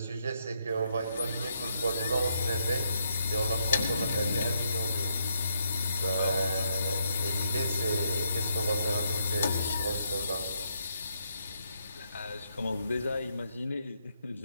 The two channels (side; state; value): both; inverted; correlation -0.76